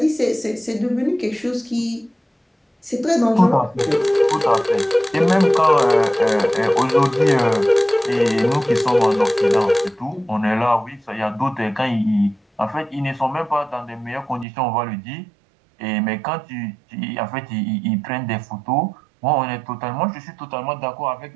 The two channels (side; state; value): left; drops out; at 14.5 s